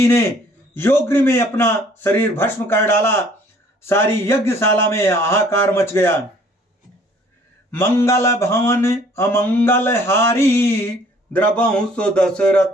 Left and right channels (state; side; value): normal; both; correlation 0.57